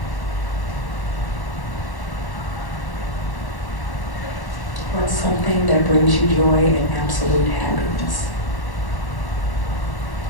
What's something that brings you joy and absolute happiness?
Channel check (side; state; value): right; late; 1.1 ms